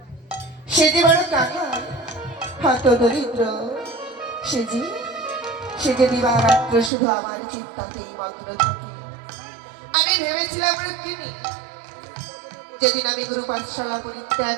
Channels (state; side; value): drops out; left; at 6.9 s